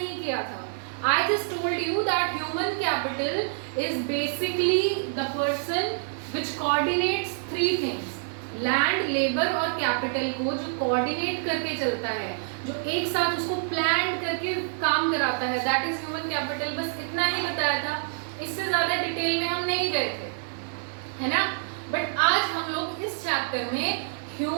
किया था. I just told you that human capital is basically the person which coordinates 3 things. Land, labour और कैपिटल को जो कोऑर्डिनेट करके चलता है, जो एक साथ उसको प्लान करके काम कराता है, दैट इज ह्यूमन कैपिटल. बस इतना ही बताया था, इससे ज्यादा डिटेल में हम नहीं गए थे, है ना. बट आज हम लोग इस चैप्टर में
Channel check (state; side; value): silent; left; digital silence